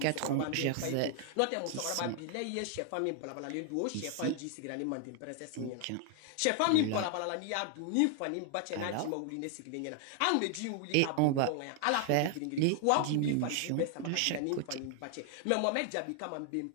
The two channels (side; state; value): both; different; correlation 0.00